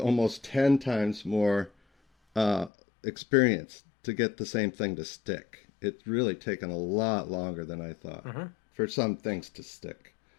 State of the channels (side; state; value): right; drops out; at 2.7 s